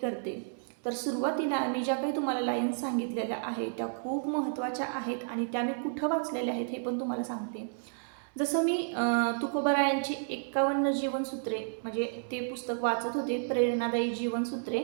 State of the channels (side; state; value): left; silent; digital silence